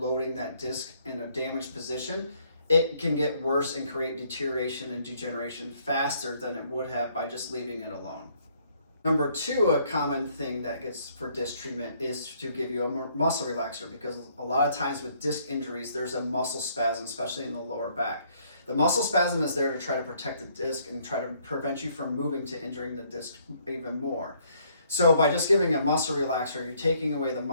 that disc in a damaged position, it can get worse and create deterioration and degeneration faster than it would have by just leaving it alone. Number two, a common thing that gets for disc treatment is to give you a muscle relaxer, because a lot of times with disc injuries, there's a muscle spasm, especially in the lower back. The muscle spasm is there to try to protect the disc and try to prevent you from moving to injuring the disc even more. So by just giving a muscle relaxer, you're taking away the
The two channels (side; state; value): both; inverted; correlation -0.66